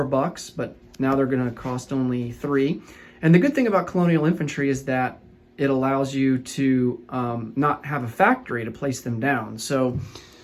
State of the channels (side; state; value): both; identical; correlation 1.00